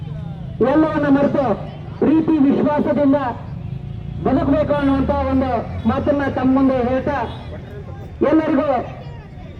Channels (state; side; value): identical; both; correlation 1.00